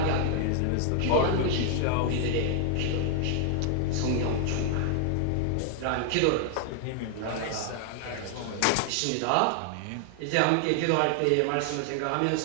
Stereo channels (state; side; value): different; both; correlation 0.00